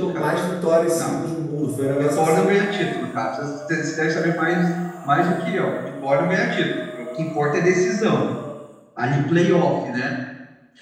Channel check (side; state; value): both; identical; correlation 1.00